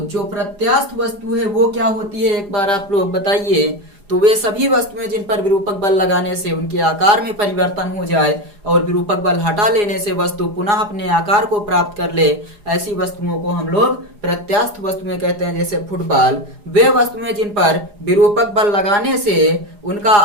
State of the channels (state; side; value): late; left; 4.8 ms